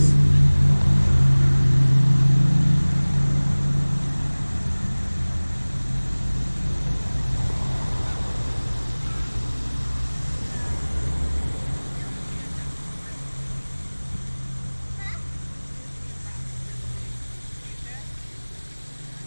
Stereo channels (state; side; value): inverted; both; correlation -1.00